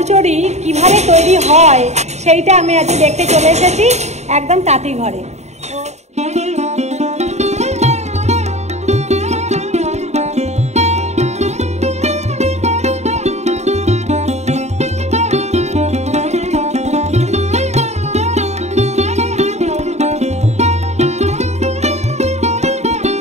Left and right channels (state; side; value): late; left; 0.32 ms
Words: কিভাবে তৈরি হয় সেইটা আমি আজ দেখতে চলে এসেছি একদম তাঁতি ঘরে।